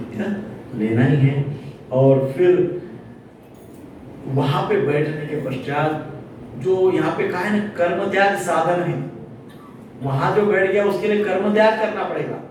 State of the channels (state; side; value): identical; both; correlation 1.00